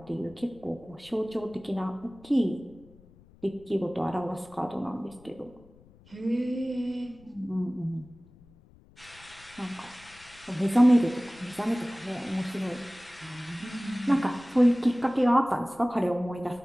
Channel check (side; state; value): left; noise; rumble, 26 dB below the sound